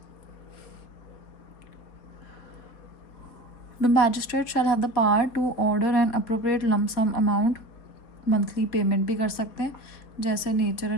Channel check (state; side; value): late; right; 4.1 ms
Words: The magistrate shall have the power to order an appropriate lump sum amount, monthly payment भी कर सकते हैं जैसे nature